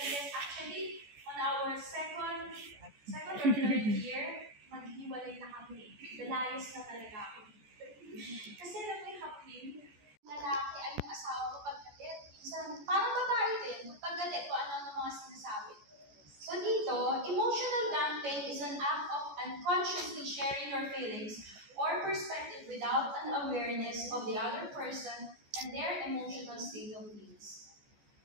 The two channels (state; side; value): late; left; 14 ms